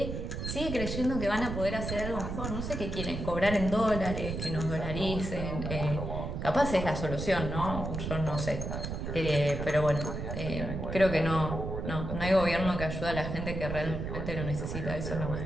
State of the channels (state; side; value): noise; right; rumble, 4 dB below the sound